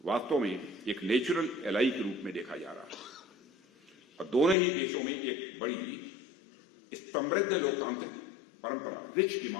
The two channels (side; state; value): right; drops out; at 4.5 s